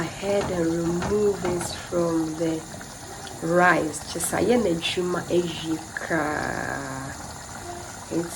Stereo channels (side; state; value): both; identical; correlation 1.00